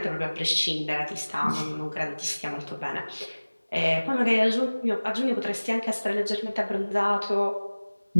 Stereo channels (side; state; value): both; inverted; correlation -1.00